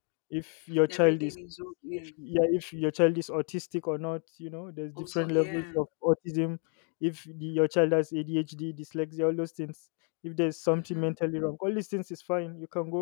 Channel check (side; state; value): right; quieter; 39.8 dB